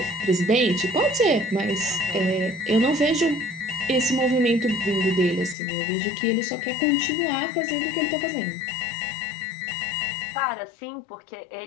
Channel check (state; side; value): drops out; right; at 5.6 s